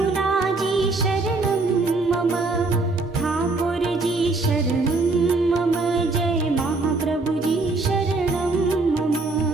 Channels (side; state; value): left; quieter; 3.4 dB